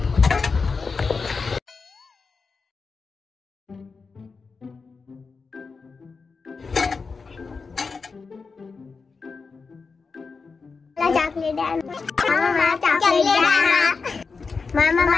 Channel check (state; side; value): quieter; right; 4.7 dB